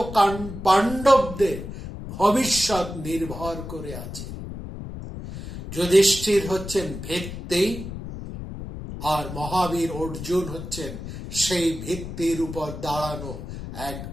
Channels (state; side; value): noise; left; rumble, 9 dB below the sound